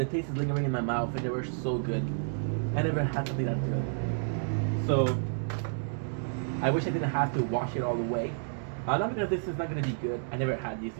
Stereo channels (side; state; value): left; silent; digital silence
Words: taste is lingering in my mouth and they were so good. I never had something that good. So I wish I didn't have to wash it all the way. Not because this is not gonna be good. I never had these